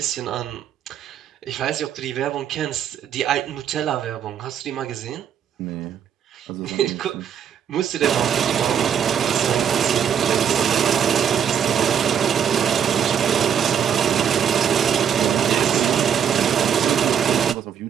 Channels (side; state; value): left; quieter; 8.4 dB